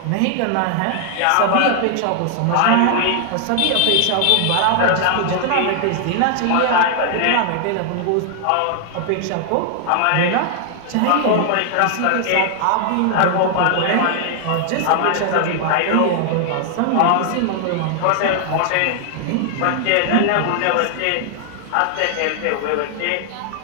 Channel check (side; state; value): both; different; correlation 0.00